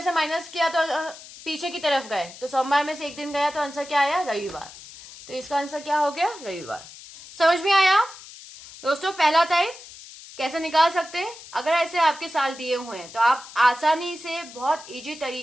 से माइनस किया तो पीछे की तरफ गए, तो सोमवार में से एक दिन गया तो आंसर क्या आया, रविवार। तो इसका आंसर क्या हो गया, रविवार। समझ में आया दोस्तों? पहला टाइप कैसे निकाल सकते हैं? अगर ऐसे आपके साल दिए हुए हैं तो आप आसानी से बहुत इजी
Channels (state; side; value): noise; left; hiss, 17 dB below the sound